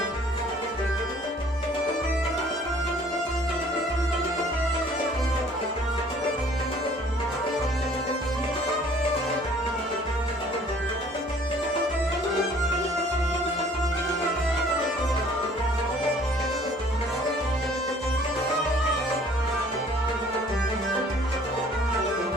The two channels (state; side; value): normal; both; correlation 0.55